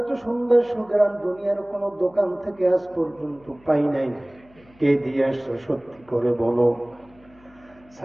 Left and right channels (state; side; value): noise; left; hum, 28 dB below the sound